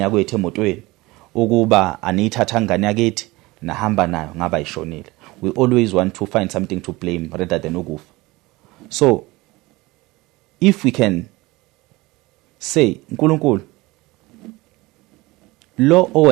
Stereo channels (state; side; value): quieter; left; 21.3 dB